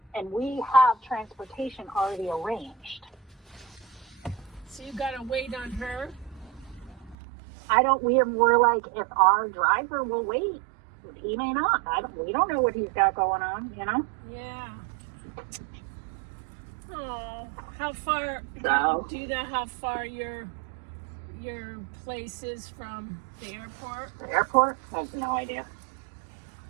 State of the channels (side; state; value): left; drops out; at 7.2 s